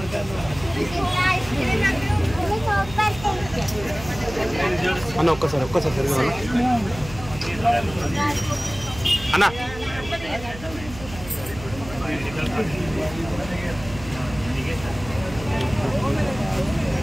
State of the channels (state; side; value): noise; right; hum, 14 dB below the sound